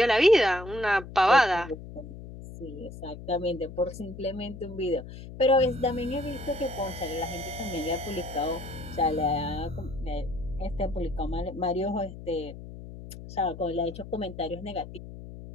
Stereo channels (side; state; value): left; noise; hum, 13 dB below the sound